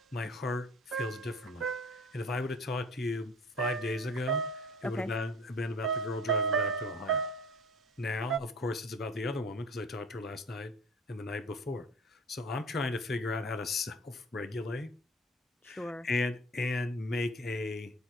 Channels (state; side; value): normal; both; correlation 0.43